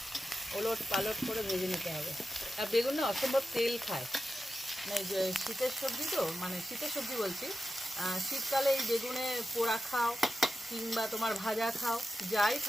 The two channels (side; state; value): both; normal; correlation 0.91